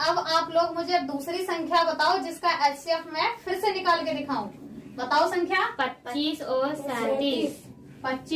अब आप लोग मुझे दूसरी संख्या बताओ, जिसका HCF मैं फिर से निकाल के दिखाऊं। बताओ संख्या। 25 और 37।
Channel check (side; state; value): both; identical; correlation 1.00